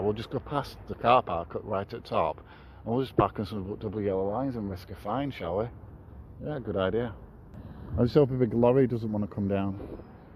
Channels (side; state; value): both; identical; correlation 1.00